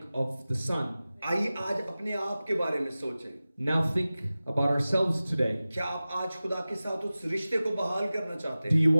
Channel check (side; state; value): both; inverted; correlation -0.96